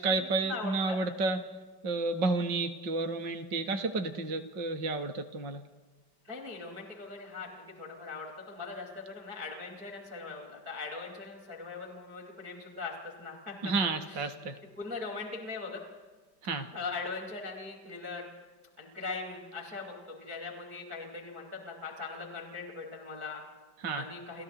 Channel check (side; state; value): left; late; 5.1 ms